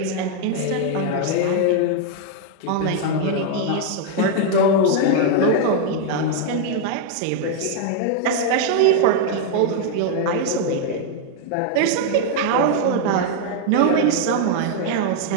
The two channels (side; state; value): both; different; correlation 0.00